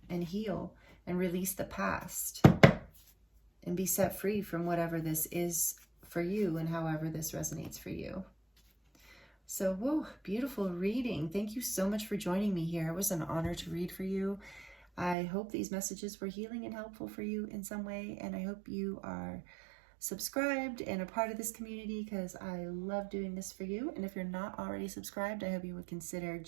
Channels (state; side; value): drops out; left; at 15.2 s